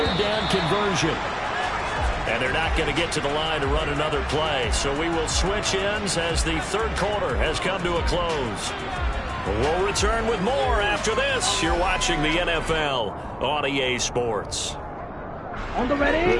down conversion. And they're not going to get to the line to run another play. So we will switch ends as the third quarter has come to a close. We'll return with more after this. You're watching the NFL on EA Sports. On the ready.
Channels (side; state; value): both; identical; correlation 1.00